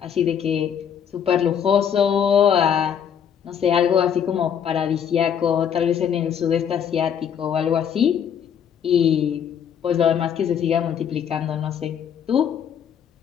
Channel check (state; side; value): quieter; right; 8.3 dB